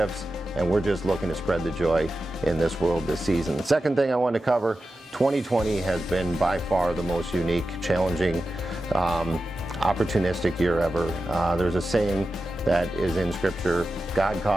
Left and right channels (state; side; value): normal; both; correlation 0.92